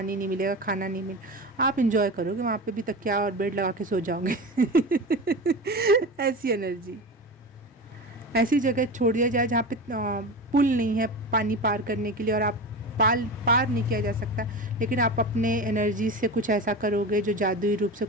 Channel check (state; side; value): normal; both; correlation 0.26